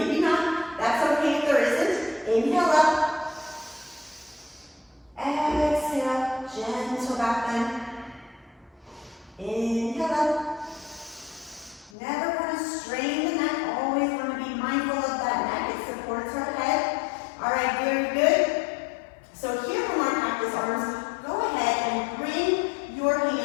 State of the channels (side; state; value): right; drops out; at 11.9 s